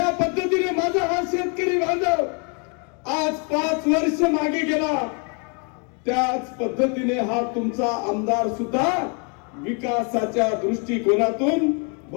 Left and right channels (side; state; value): right; quieter; 36.9 dB